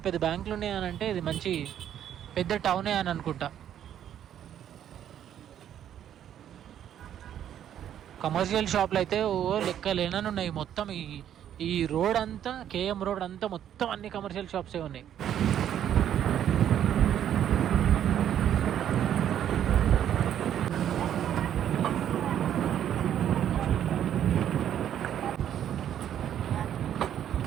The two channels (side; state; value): left; quieter; 10.2 dB